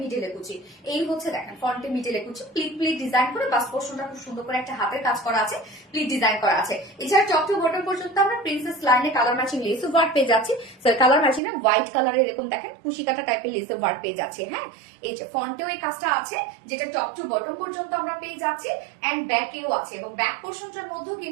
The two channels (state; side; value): drops out; left; at 11.4 s